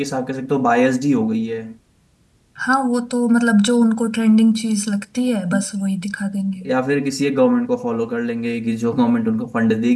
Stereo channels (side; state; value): both; identical; correlation 1.00